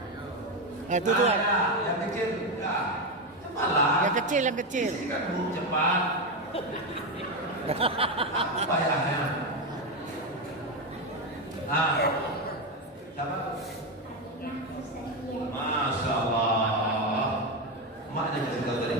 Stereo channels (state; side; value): normal; both; correlation 0.11